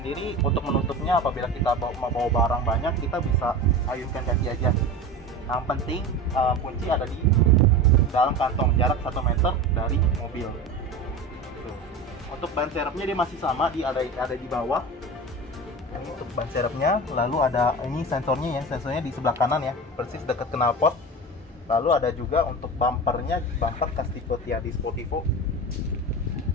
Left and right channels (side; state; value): both; normal; correlation 0.29